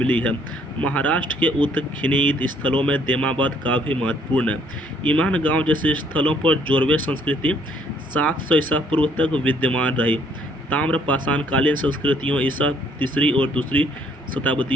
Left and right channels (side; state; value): both; normal; correlation 0.64